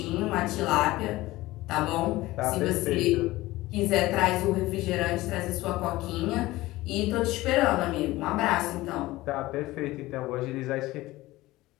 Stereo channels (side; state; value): right; quieter; 18.3 dB